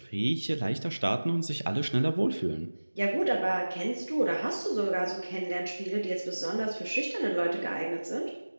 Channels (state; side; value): inverted; both; correlation -1.00